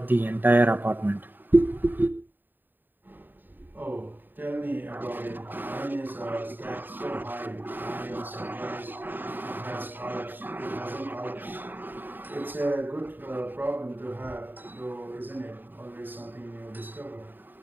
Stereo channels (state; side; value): late; left; 0.091 ms